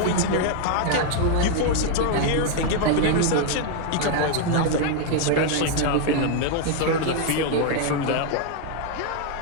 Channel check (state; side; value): different; both; correlation 0.00